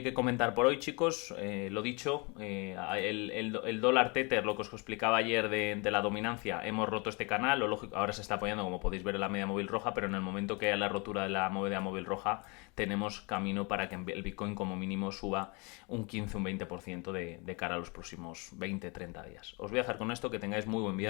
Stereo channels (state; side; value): quieter; right; 30.1 dB